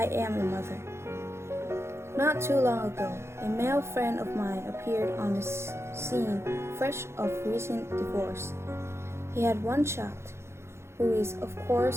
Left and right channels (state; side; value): late; left; 0.13 ms